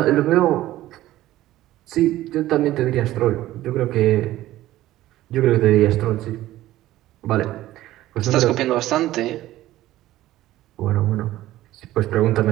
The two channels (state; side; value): quieter; left; 15.2 dB